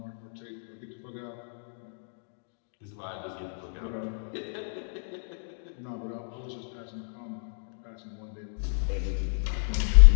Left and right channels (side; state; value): right; silent; digital silence